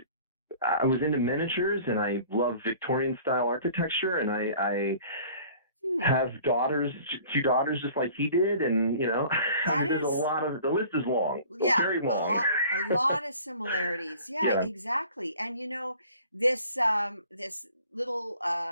I was into miniatures and I love Victorian style architecture, and I Hmm. have two daughters just like he did, and I That mean, is, the list is long, yeah, very long. a lot of similarities. Yeah, Yeah, exactly. And this little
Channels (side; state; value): both; inverted; correlation -0.49